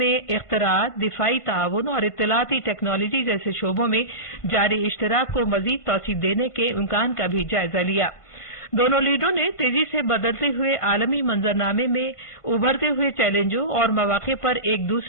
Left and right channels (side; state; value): right; late; 1.5 ms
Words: इख्तराअत, दिफाई ताउन और इत्तलाती टेक्नोलॉजी जैसे शोबों में जारी इश्तराक को मज़ीद तौसीक़ देने के इम्कान का भी जायजा लिया। दोनों लीडरों ने तेजी से बदलते हुए आलमी मंजरनामे में उभरते हुए चैलेंजों और मौक़े पर एक